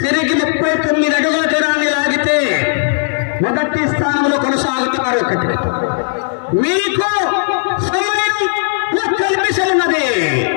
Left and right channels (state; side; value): silent; right; 61 dB below the other